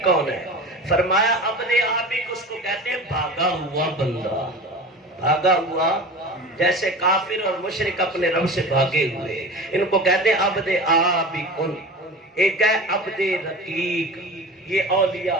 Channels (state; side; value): normal; both; correlation 0.34